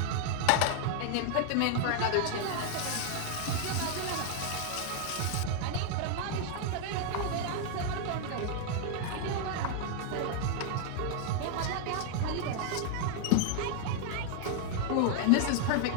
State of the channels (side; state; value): both; different; correlation -0.01